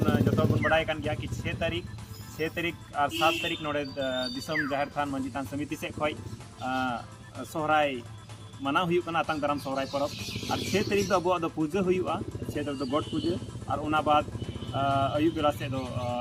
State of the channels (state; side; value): identical; both; correlation 1.00